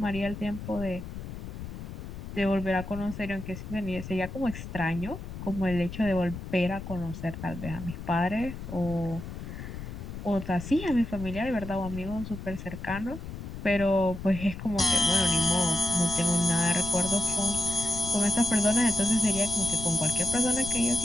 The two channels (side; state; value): left; noise; rumble, 9 dB below the sound